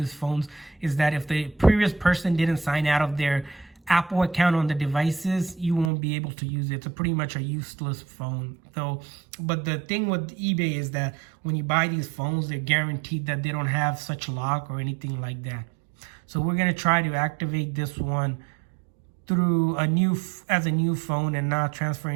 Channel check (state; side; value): drops out; left; at 5.9 s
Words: phones, is that if the previous person didn't sign out of their Apple account on the devices, you won't be able to use it. It's pretty much a useless phone. So, but the thing with eBay is that when you buy these phones, they're guaranteed that they don't have such lock or anything like that. So we're gonna try to activate this one through as a new phone and not transfer